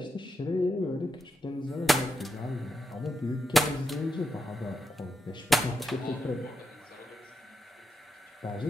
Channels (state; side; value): normal; both; correlation 0.85